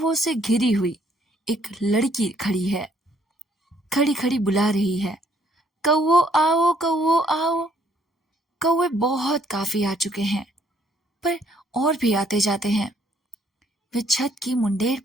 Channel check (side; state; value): both; normal; correlation 0.66